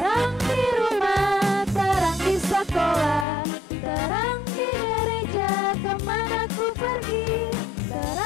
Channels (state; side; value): drops out; right; at 3.2 s